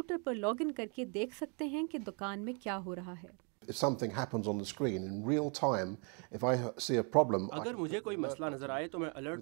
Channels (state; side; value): quieter; left; 36.4 dB